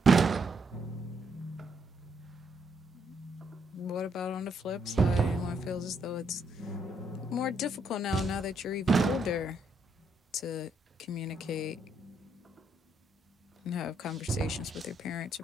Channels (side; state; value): both; normal; correlation 0.74